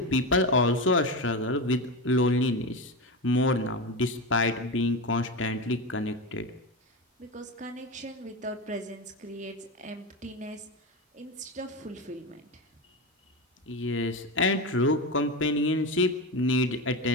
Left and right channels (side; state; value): both; normal; correlation 0.19